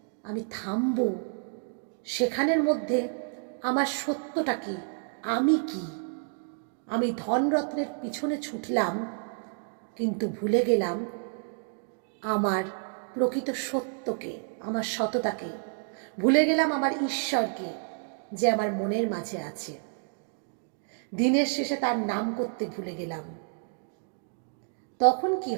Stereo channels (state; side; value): silent; left; 57 dB below the other